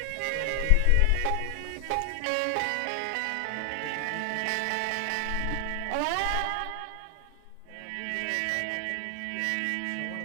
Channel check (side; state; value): both; different; correlation 0.00